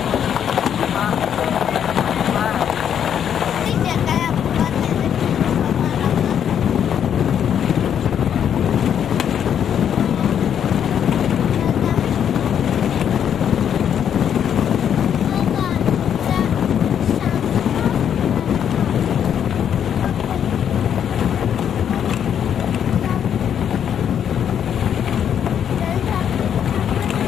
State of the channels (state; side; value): quieter; right; 8.8 dB